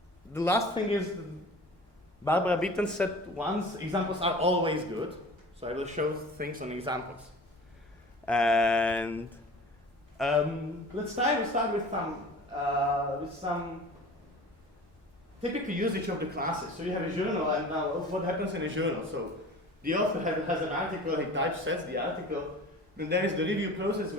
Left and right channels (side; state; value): both; normal; correlation 0.41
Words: the last thing is, Barbara Beaton said once, examples are always good. So I will show things on examples. And let's start with some typical usage of the classes. So you have a journal, and now what happens in a journal? So the author has an article, he typesets the article, and there is the review process